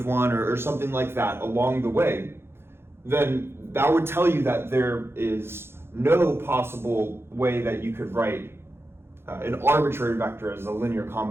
1, or something like that along the way, then that would tell you that there is no possible way that you could write an arbitrary vector as a linear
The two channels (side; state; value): left; late; 0.12 ms